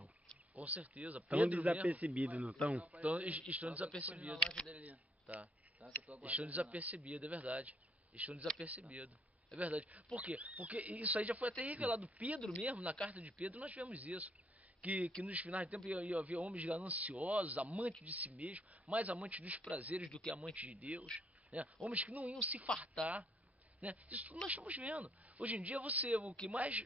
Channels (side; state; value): both; normal; correlation 0.69